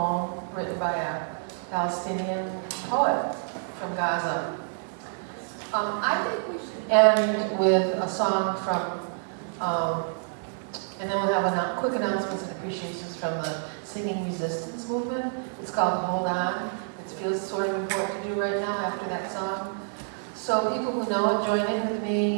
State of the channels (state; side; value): silent; left; 59 dB below the other